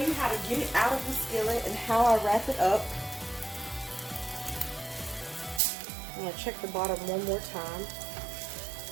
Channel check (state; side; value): drops out; left; at 5.6 s